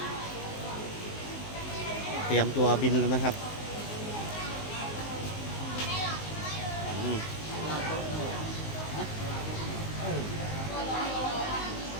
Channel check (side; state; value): right; late; 19 ms